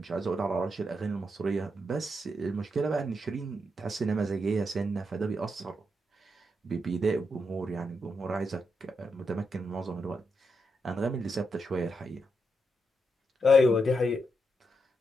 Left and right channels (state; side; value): normal; both; correlation 0.83